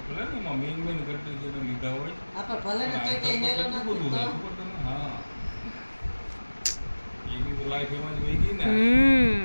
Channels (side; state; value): both; inverted; correlation -1.00